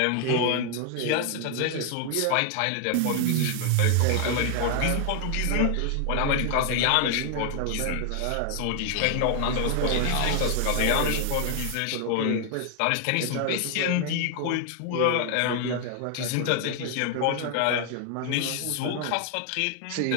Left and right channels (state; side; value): different; both; correlation 0.00